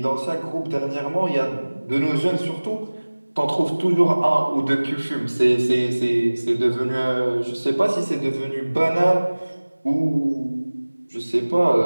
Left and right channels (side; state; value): both; inverted; correlation -1.00